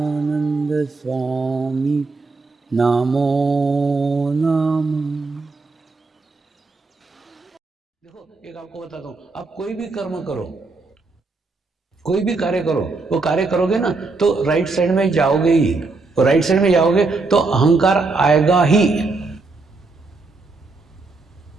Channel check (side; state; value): left; quieter; 3.7 dB